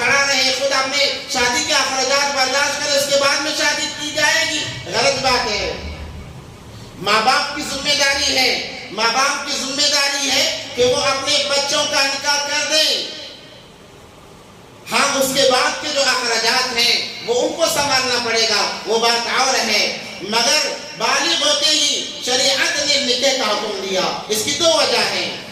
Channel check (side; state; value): both; identical; correlation 1.00